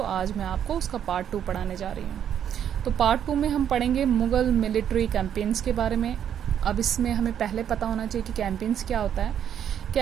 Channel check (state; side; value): quieter; left; 9.3 dB